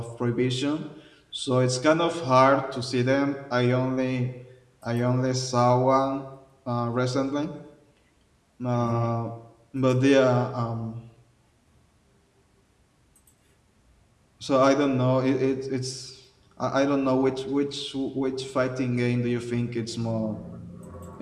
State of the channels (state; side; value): identical; both; correlation 1.00